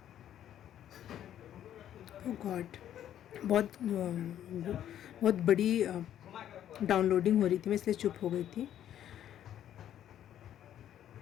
ओ गॉड, बहुत बड़ी डाउनलोडिंग हो रही थी, मैं इसलिए चुप हो गई थी।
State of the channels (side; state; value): right; quieter; 10.9 dB